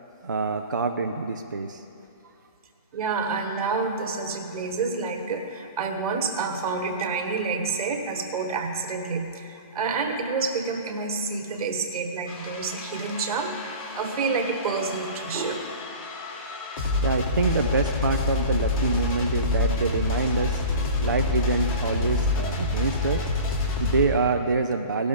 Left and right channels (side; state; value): both; inverted; correlation -0.35